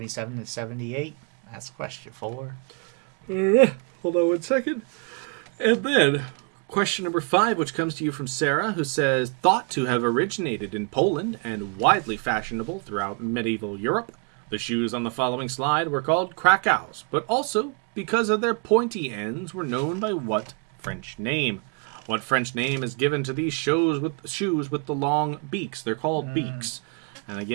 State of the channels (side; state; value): left; quieter; 36.0 dB